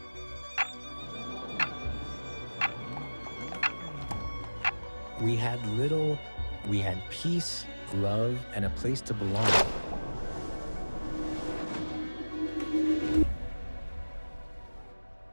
We had little, we had peace, love, and a place to belong.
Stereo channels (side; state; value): both; inverted; correlation -1.00